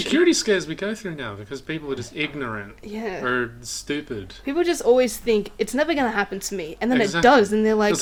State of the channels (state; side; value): identical; both; correlation 1.00